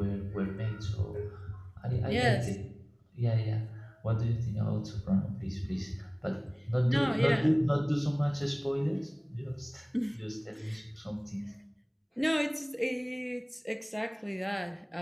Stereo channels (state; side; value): identical; both; correlation 1.00